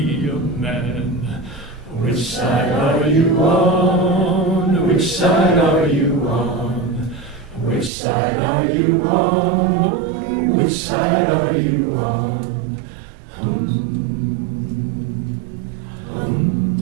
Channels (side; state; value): left; drops out; at 7.9 s